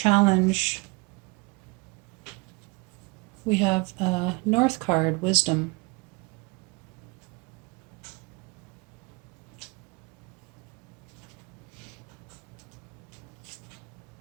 we have a North card, Wisdom.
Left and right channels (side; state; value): left; quieter; 27.6 dB